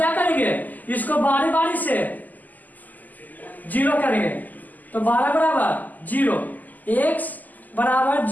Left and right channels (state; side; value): late; right; 0.082 ms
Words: करेंगे, इसको बारी बारी से 0 करेंगे, तो 12 बराबर 0, x बराबर